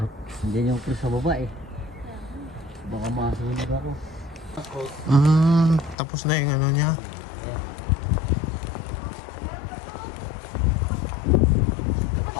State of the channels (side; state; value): right; drops out; at 6.0 s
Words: Hindi yung cruise sa baba eh. Baka masunog ako. Tapos na yung ano niya.